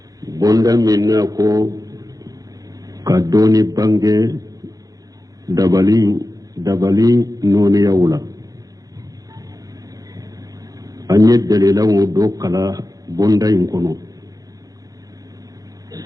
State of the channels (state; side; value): late; left; 0.18 ms